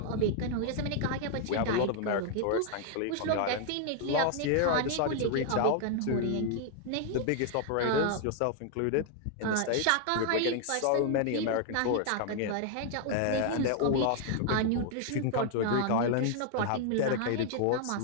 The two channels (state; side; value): different; both; correlation 0.00